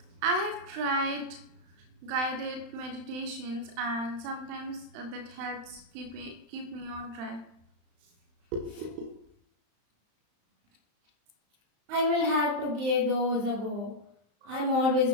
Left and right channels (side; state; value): left; late; 35 ms